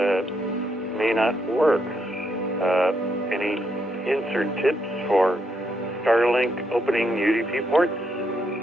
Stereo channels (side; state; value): both; normal; correlation 0.78